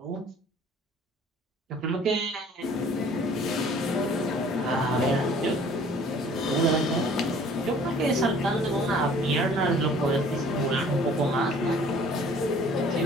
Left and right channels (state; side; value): normal; both; correlation 0.53